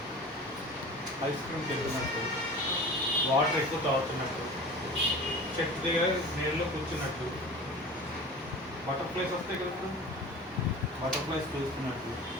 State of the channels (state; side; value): normal; both; correlation 0.37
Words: ఐస్ క్రీమ్కి వెళ్తున్నట్టు, వాటర్ ఎక్కువ తాగుతున్నట్టు, చెట్టు దగ్గర నీళ్ళలో కూర్చున్నట్టు, బటర్ఫ్లైస్ వస్తాయి కదా, బటర్ఫ్లైస్ చూస్తున్నట్టు,